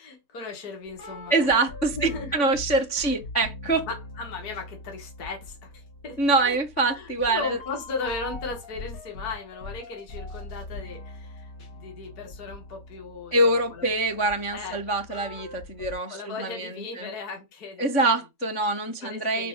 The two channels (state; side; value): late; right; 3.5 ms